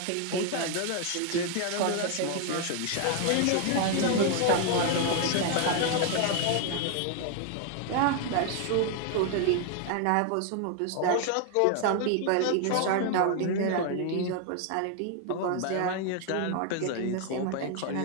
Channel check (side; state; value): both; different; correlation 0.00